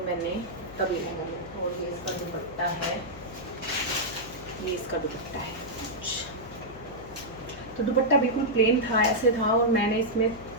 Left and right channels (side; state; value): left; noise; hum, 16 dB below the sound